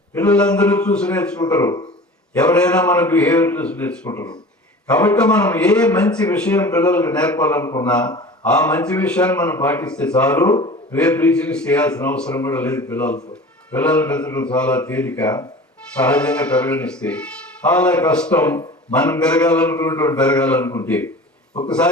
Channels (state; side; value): normal; both; correlation 0.39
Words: పిల్లలందరూ చూసి నేర్చుకుంటారు, ఎవరైనా మన బిహేవియర్ చూసి నేర్చుకుంటారు. కాబట్టి మనం ఏ మంచి విషయం పిల్లలకు నేర్పాలనుకున్నా ఆ మంచి విషయాన్ని మనం పాటిస్తే చాలు. ఏ ప్రీచింగ్స్ చేయాల్సిన అవసరం కూడా లేదు. పిల్లలు పెంచడం చాలా తేలిక, సహజంగా పెరగనిస్తే. చాలా కష్టం మనం పెరగాలనుకుంటే.